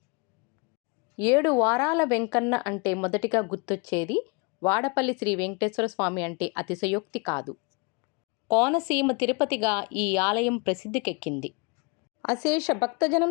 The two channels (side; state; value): right; quieter; 30.1 dB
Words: 7 వారాల వెంకన్న అంటే మొదటిగా గుర్తొచ్చేది వాడపల్లి శ్రీ వెంకటేశ్వర స్వామి అంటే అతిశయోక్తి కాదు. కోనసీమ తిరుపతిగా ఈ ఆలయం ప్రసిద్ధికెక్కింది. అశేష